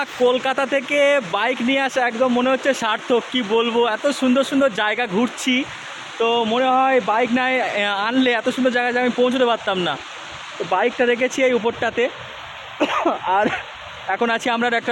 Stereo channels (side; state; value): both; identical; correlation 1.00